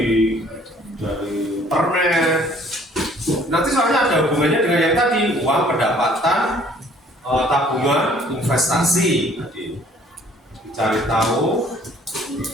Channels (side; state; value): both; normal; correlation 0.57